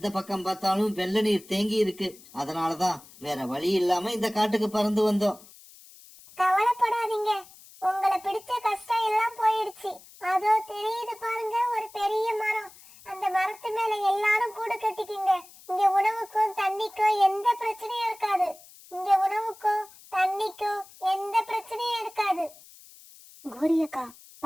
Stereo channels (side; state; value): left; noise; hiss, 22 dB below the sound